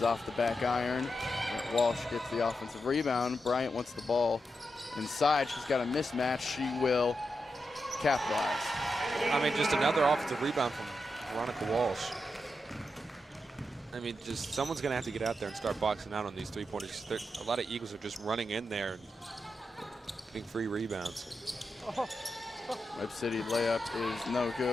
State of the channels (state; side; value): normal; both; correlation 0.87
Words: off the back iron. Walsh gets the offensive rebound. Bryant wants the ball inside. She's got a mismatch. She will capitalize. I mean, just another offensive rebound from Veronica Walsh. I mean, just someone's going to have to get out there and start boxing out on these three-pointers. A lot of Eagles are just running in there and getting free rebounds. Webb City layup is no